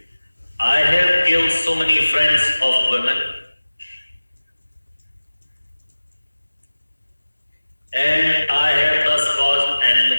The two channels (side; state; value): both; inverted; correlation -1.00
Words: I have killed so many friends of women, and I have thus caused